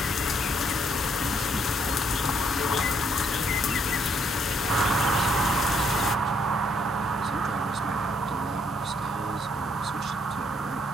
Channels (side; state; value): both; normal; correlation 0.71